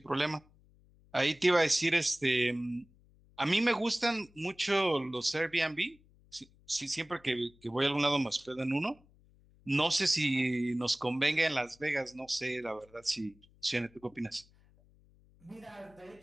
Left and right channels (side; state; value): left; noise; hum, 29 dB below the sound